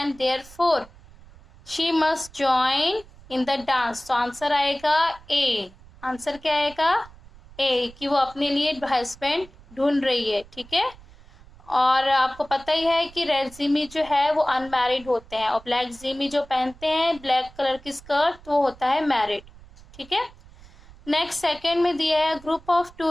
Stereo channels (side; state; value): right; noise; rumble, 22 dB below the sound